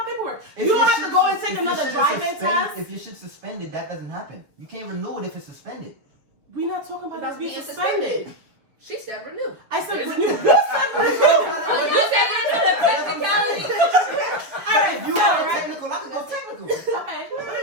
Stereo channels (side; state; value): left; late; 7.0 ms